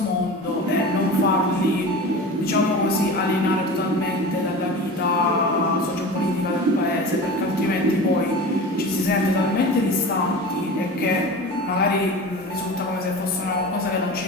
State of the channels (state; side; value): normal; both; correlation 0.33